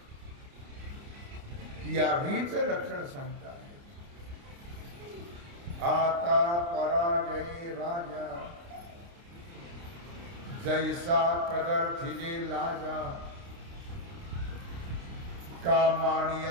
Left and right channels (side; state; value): left; late; 29 ms